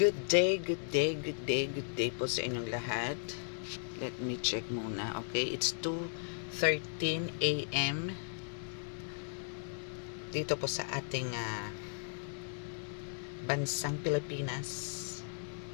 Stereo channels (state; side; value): silent; right; digital silence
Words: Good day, good day, good day, good day po sa inyong lahat. Let me check muna. Okay, it's 2:13 AM dito po sa ating bansang Pilipinas.